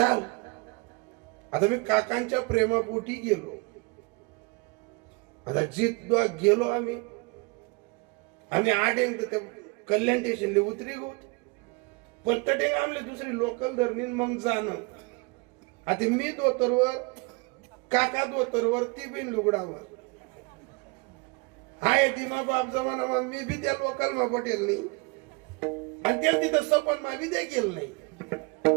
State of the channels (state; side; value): quieter; left; 28.9 dB